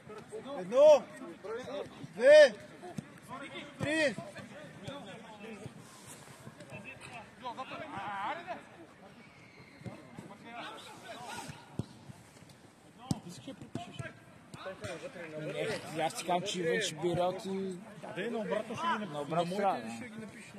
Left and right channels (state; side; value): identical; both; correlation 1.00